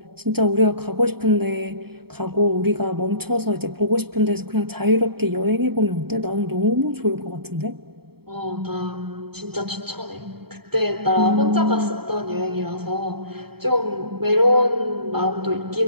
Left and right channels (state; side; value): late; left; 0.96 ms